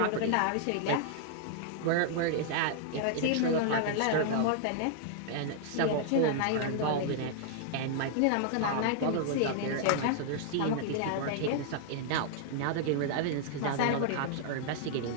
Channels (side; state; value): both; different; correlation -0.01